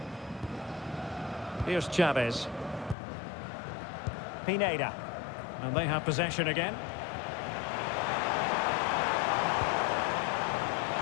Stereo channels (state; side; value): drops out; right; at 3.0 s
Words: Here's Chavez. Pineda. And they have possession again.